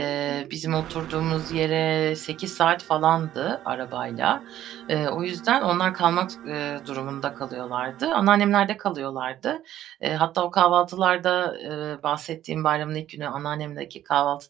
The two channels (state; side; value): quieter; left; 12.4 dB